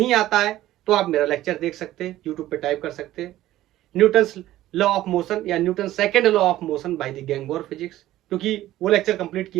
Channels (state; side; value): quieter; left; 14.7 dB